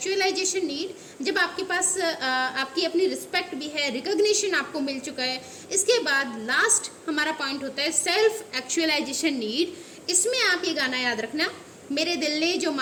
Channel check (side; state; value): both; identical; correlation 1.00